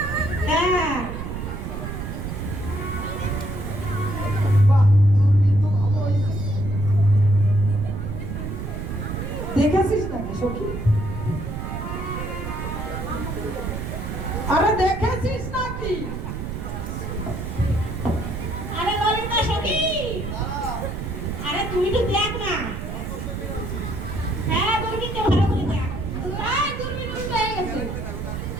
হ্যাঁ, বাহ, দূরবীন তো ভালো হয়েছে। দেখেছিস নাকি সখী? আরে দেখেছিস নাকি? আরে ললিতা সখী, আরে তুই তো দেখ না। হ্যাঁ, দূরবীনটা ভালো করে দেখ। তাই দূরবীন উল্টো হয়ে গেছে।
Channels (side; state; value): right; noise; rumble, 6 dB below the sound